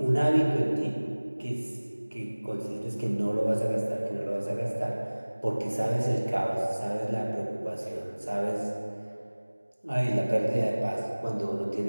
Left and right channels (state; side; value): inverted; both; correlation -1.00